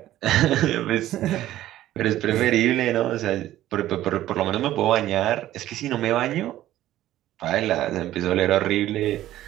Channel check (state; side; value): quieter; left; 13.9 dB